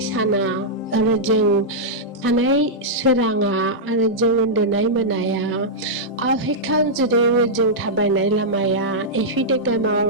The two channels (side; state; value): both; normal; correlation -0.10